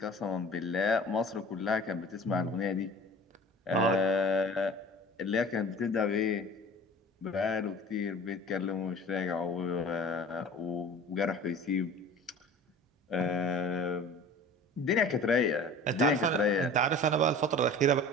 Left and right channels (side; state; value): both; normal; correlation 0.41